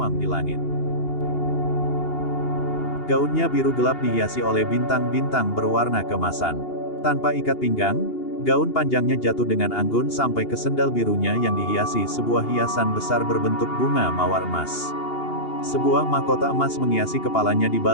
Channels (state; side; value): late; right; 2.8 ms